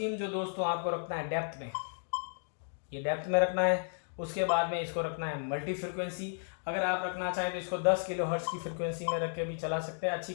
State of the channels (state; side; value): silent; right; digital silence